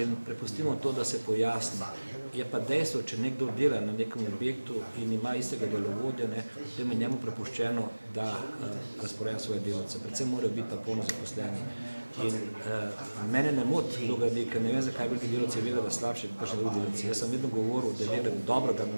in prepustimo to, da se pojasni. Je pa dejstvo, če nekdo dela na nekem objektu in ima istega delovodja, potem je njemu prepuščeno, da razporeja svoje delavce. Predvsem morajo biti pa polno zaposleni. In mene ne moti kdo gradi, ker ne vem, zakaj veliki delavci vedo, da slabši kot kakšni drugi delavci. Jaz sem vedno govoril, da je dobro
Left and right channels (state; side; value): inverted; both; correlation -1.00